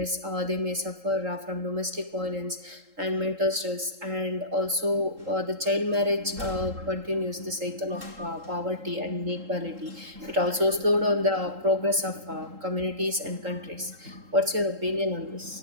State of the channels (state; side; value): late; left; 3.8 ms